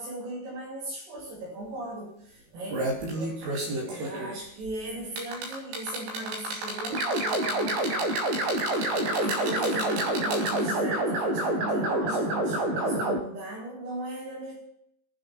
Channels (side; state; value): left; late; 18 ms